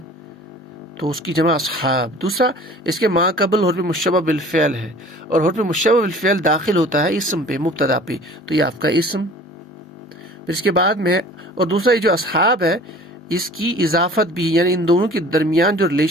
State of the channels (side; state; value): both; normal; correlation 0.46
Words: تو اس کی جمع اصحاب. دوسرا اس کے ما قبل حرف مشبہ بالفعل ہے، اور حرف مشبہ بالفعل داخل ہوتا ہے اسم پہ، مبتدا پہ، تو یہ آپ کا اسم. پھر اس کے بعد میں، اور دوسرا یہ جو اصحاب ہے اس کی اضافت بھی، یعنی ان دونوں کے درمیان جو